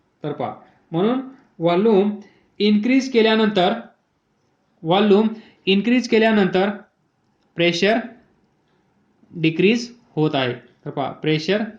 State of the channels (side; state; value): both; identical; correlation 1.00